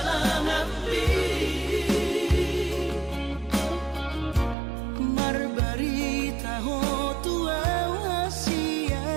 marbarita ho tua wasia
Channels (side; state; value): left; drops out; at 4.5 s